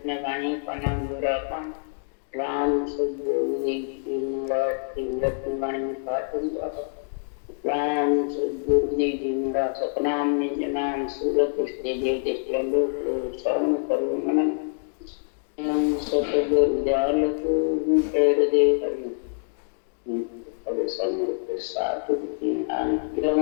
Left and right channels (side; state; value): right; silent; digital silence